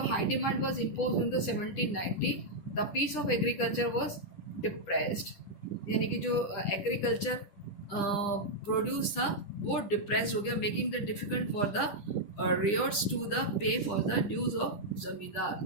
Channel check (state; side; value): late; right; 10 ms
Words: high demand was imposed in the 1790. The piece of agriculture was depressed, यानी कि जो एग्रीकल्चर प्रोड्यूस था वो डिप्रेस्ड हो गया, making the difficult for the ryots to the pay for the dues of zamindar.